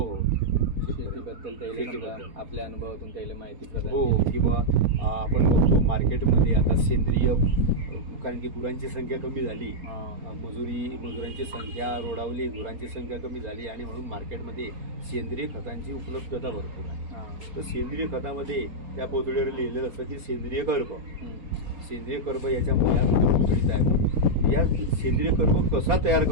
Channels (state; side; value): late; left; 4.3 ms